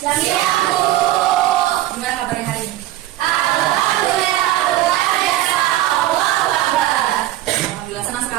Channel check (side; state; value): left; quieter; 14.7 dB